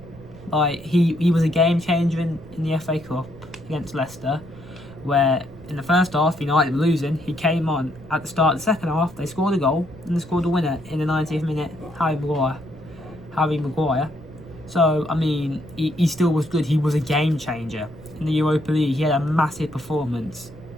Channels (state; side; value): noise; right; rumble, 21 dB below the sound